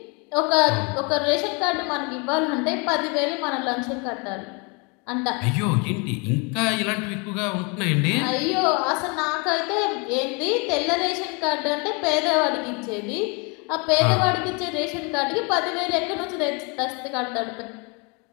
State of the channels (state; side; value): quieter; right; 31.7 dB